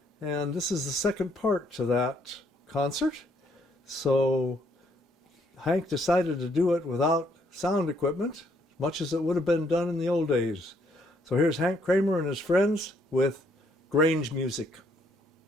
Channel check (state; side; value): normal; both; correlation 0.69